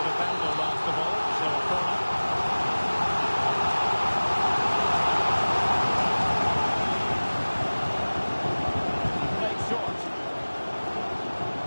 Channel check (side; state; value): both; inverted; correlation -1.00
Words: defender last of all, so a corner. Played short.